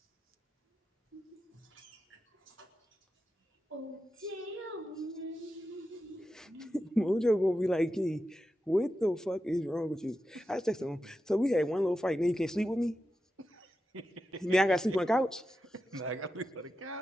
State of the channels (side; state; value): both; normal; correlation 0.90